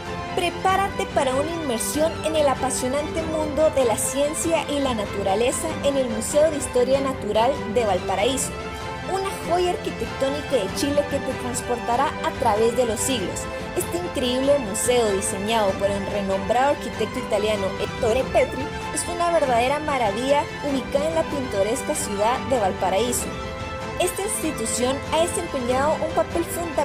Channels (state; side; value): identical; both; correlation 1.00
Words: Prepárate para una inmersión en el apasionante mundo de la ciencia y la naturaleza en el Museo de Historia Natural de Valparaíso, una joya arquitectónica de Chile que te transportará a través de los siglos. Este increíble museo, diseñado por el renombrado arquitecto italiano Ettore Petri, es una verdadera maravilla ubicada en la pintoresca ciudad de Valparaíso. Esta institución ha desempeñado un papel